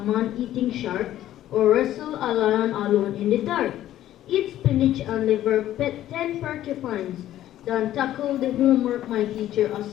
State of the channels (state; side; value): quieter; right; 13.0 dB